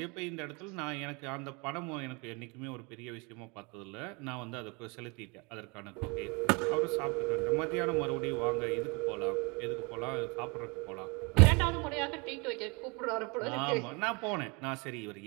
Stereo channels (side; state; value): left; quieter; 29.5 dB